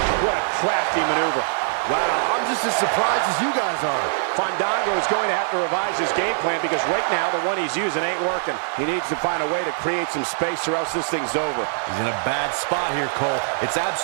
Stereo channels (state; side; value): silent; left; 64 dB below the other